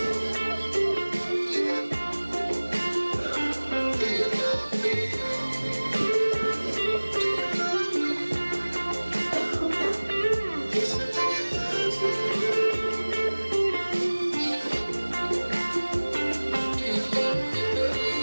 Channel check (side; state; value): both; inverted; correlation -1.00